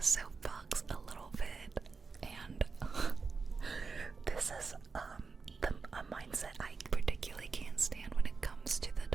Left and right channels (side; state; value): left; quieter; 4.6 dB